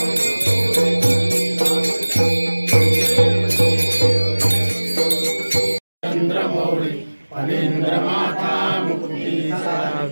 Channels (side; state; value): both; inverted; correlation -1.00